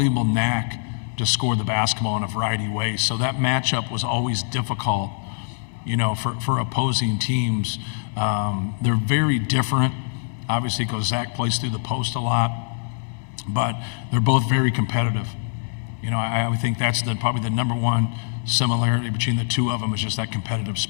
knack to score the basketball in a variety of ways. So that matchup was always difficult, for opposing teams. They're very different, obviously, because Zach plays through the post a lot, but they're both very competitive. I would think that's probably the number one similarity between the two of them is just that competitive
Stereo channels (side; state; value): right; silent; digital silence